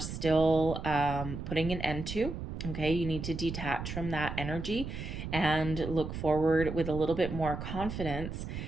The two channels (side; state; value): right; noise; rumble, 6 dB below the sound